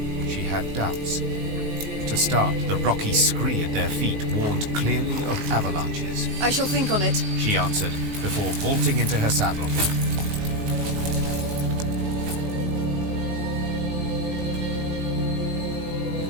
she had doubts. To start, the rocky scree at their feet warned clearly of avalanches. I shall think on it, she answered, before vaulting into her saddle.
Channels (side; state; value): left; late; 19 ms